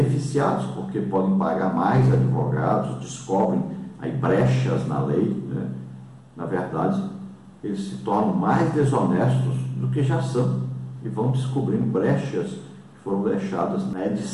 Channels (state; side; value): identical; both; correlation 1.00